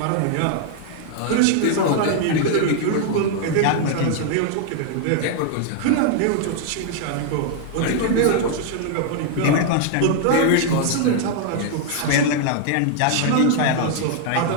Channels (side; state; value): both; different; correlation 0.00